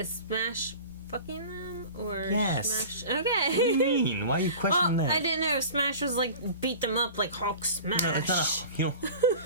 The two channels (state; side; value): inverted; both; correlation -0.37